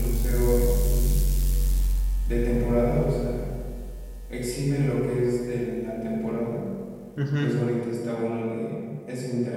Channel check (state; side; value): identical; both; correlation 1.00